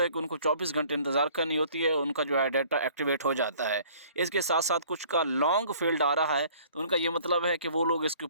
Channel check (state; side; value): inverted; both; correlation -0.54